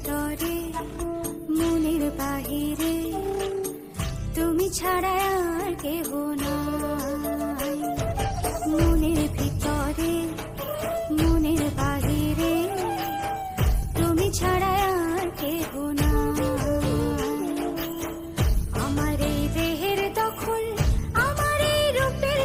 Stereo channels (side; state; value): both; identical; correlation 1.00